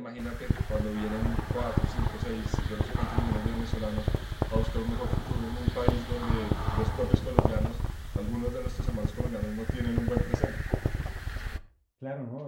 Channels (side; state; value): both; identical; correlation 1.00